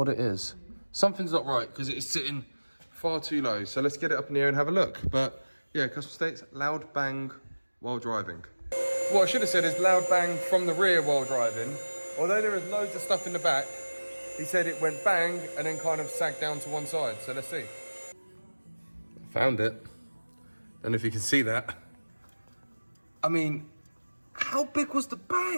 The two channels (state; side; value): inverted; both; correlation -1.00